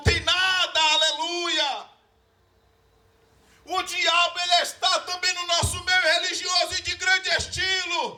tem nada, aleluia. O diabo, ele está também no nosso meio religioso e de grande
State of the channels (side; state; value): both; identical; correlation 1.00